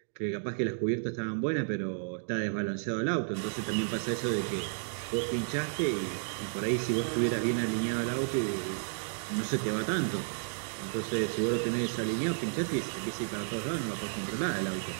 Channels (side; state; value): left; silent; digital silence